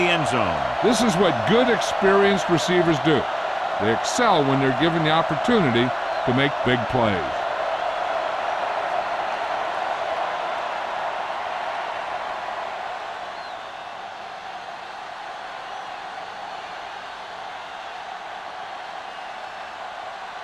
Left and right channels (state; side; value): identical; both; correlation 1.00